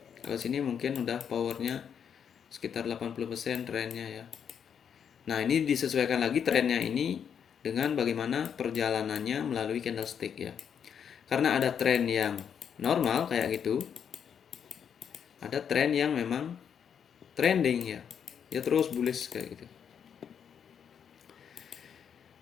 Kalau sini mungkin udah powernya sekitar 80% trennya ya. Nah, ini disesuaikan lagi trennya ini dengan bagaimana perjalanannya melalui candlestick ya. Karena ada tren yang normal kayak gitu, ada tren yang memang trending ya, ya terus bullish kayak gitu.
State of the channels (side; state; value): right; quieter; 7.8 dB